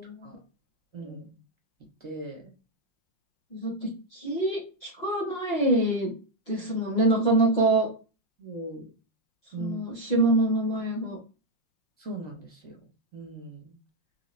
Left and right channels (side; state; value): right; late; 5.6 ms